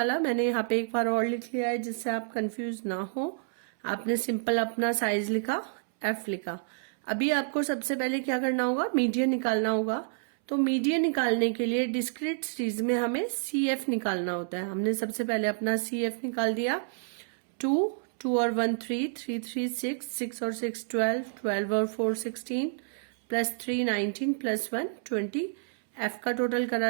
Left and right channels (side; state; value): left; silent; 58 dB below the other